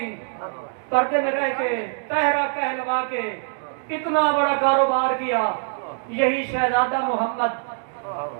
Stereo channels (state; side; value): silent; left; digital silence